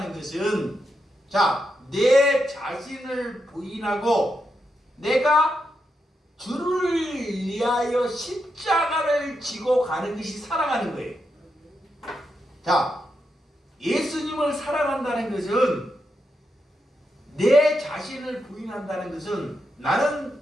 것은 내 자신을 부인하고 내가 주를 위하여 십자가를 지고 가는 것이 사랑하는 거예요. 예수님을 사랑한다는 것은 내 자신을 부인한다는 것은 나는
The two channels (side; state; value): both; normal; correlation 0.84